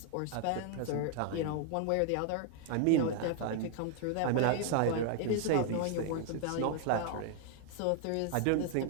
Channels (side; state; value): both; different; correlation 0.00